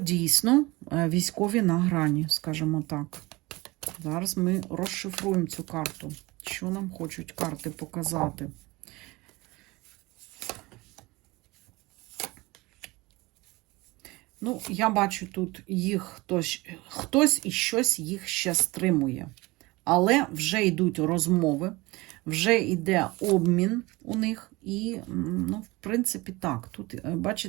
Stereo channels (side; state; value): left; quieter; 22.2 dB